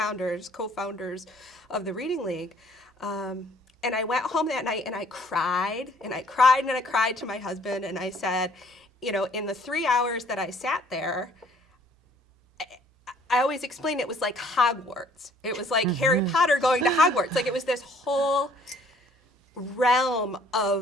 of the Reading League. And I went home that night and I cried to my husband, and I said, you know, in the 3 hours that I sat there, I always explained it was like Hogwarts. It was like Harry Potter going to Hogwarts. Like, it was this whole realm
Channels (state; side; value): normal; both; correlation 0.59